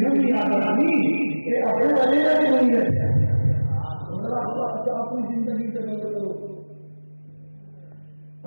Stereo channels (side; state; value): both; inverted; correlation -1.00